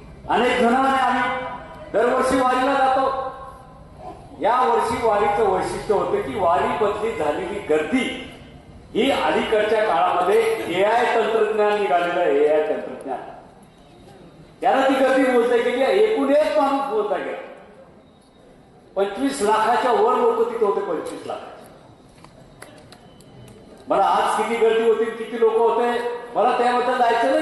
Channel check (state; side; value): identical; both; correlation 1.00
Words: अनेक जणांनी आम्ही दरवर्षी वारीला जातो. या वर्षी वारीचं वैशिष्ट्य होतं की वारी बदली झालेली गर्दी ही अलीकडच्या काळामध्ये AI तंत्रज्ञान निघालेलं आहे. AI तंत्रज्ञान त्यानं ती गर्दी मोजता गेली, एकूण एक माणूस मोजता गेला. 25 लाखाच्या वर लोक तिथे होते, 25 लाख. मला आज किती गर्दी होती, किती लोक होते, मला त्याबद्दल जायचं